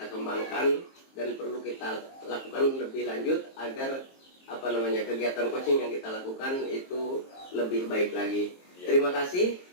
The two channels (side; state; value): right; late; 22 ms